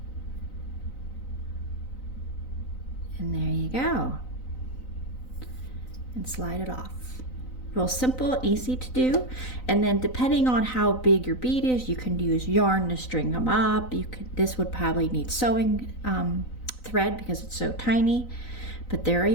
And there you go. And slide it off. Real simple, easy to do. And then depending on how big your bead is, you can use yarn to string them up. This would probably need sewing thread because it's so tiny, but there are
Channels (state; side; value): late; right; 4.0 ms